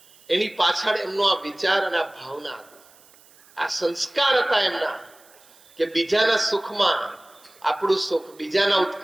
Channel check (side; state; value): right; noise; hiss, 27 dB below the sound